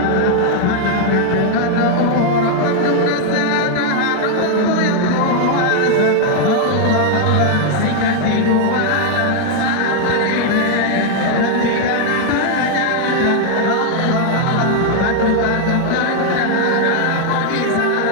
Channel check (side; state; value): both; different; correlation 0.00